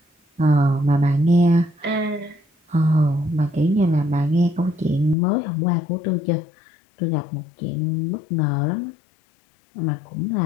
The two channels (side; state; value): right; drops out; at 5.2 s